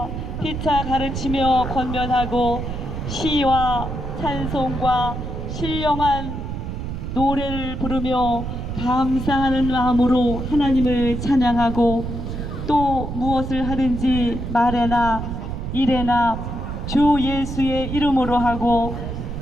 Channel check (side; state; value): right; noise; rumble, 5 dB below the sound